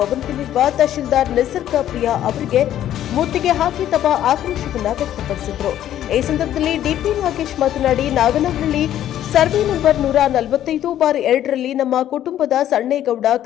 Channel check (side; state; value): right; quieter; 11.7 dB